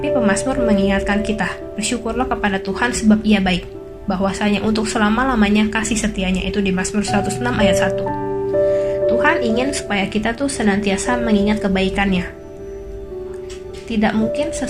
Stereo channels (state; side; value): identical; both; correlation 1.00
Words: pemazmur mengingatkan kita, bersyukurlah kepada Tuhan sebab Ia baik, bahwasanya untuk selama-lamanya kasih setianya, itu di Mazmur 106 ayat 1. Tuhan ingin supaya kita tuh senantiasa mengingat kebaikannya. Tidak mungkin